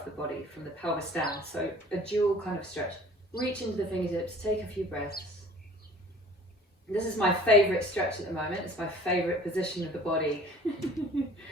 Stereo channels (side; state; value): both; normal; correlation 0.48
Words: the body, from the pelvis down. So a dual kind of stretch. Reach into the fingertips, take a few breaths. This is my favorite stretch at the moment. It's my favorite position of the body.